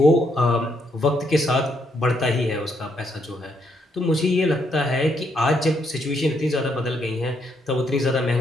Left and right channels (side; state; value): both; normal; correlation 0.75